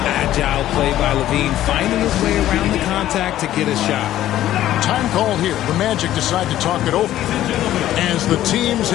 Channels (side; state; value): right; quieter; 13.2 dB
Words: Agile play by Levine, finding his way around the contact to get a shot. Time called here. The Magic decide to talk it over. As the teams